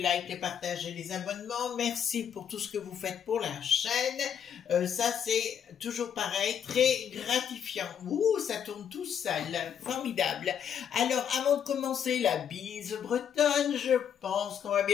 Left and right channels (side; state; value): right; quieter; 8.4 dB